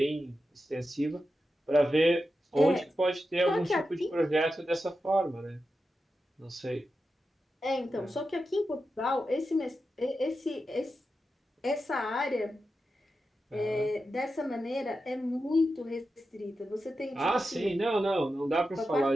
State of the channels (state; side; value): normal; both; correlation 0.90